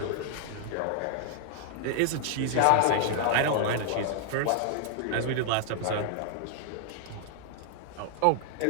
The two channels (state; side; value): different; both; correlation 0.00